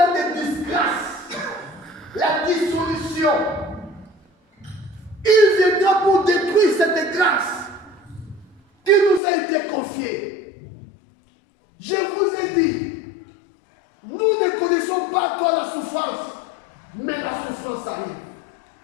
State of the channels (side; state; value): right; drops out; at 9.2 s